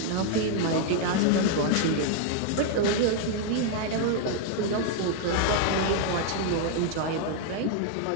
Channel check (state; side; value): different; both; correlation 0.00